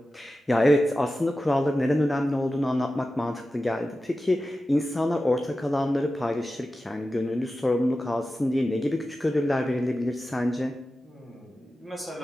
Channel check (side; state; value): both; normal; correlation 0.93